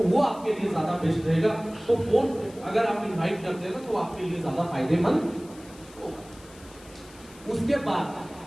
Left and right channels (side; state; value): left; noise; hiss, 22 dB below the sound